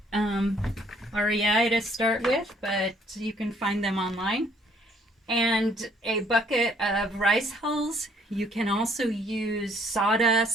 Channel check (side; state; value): both; normal; correlation 0.64